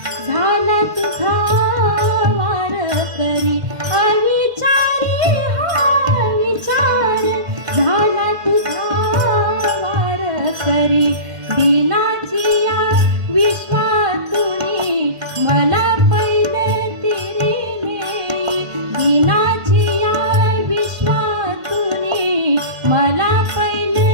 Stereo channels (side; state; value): left; late; 1.5 ms